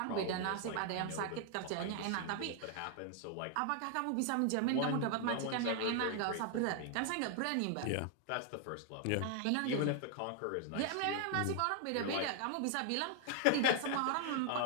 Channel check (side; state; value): both; different; correlation 0.00